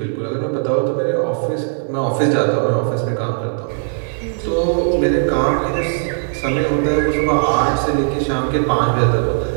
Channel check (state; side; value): silent; left; digital silence